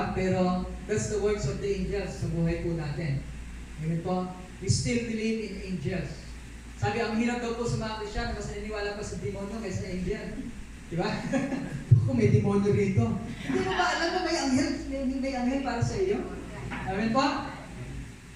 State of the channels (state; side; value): identical; both; correlation 1.00